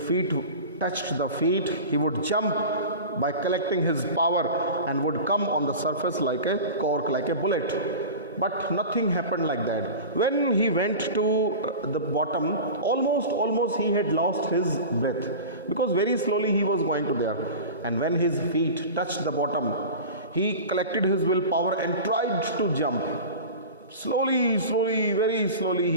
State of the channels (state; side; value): inverted; both; correlation -0.32